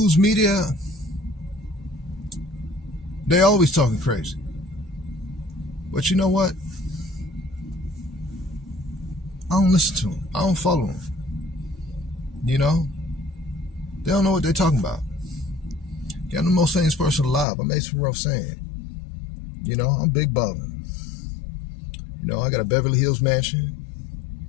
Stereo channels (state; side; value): drops out; right; at 17.4 s